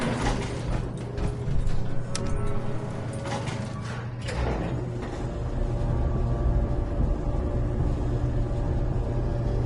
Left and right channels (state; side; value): identical; both; correlation 1.00